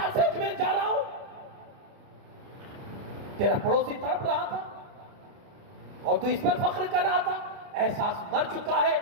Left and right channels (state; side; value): late; left; 30 ms